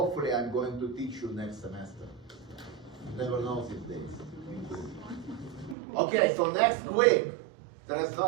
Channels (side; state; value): left; drops out; at 5.8 s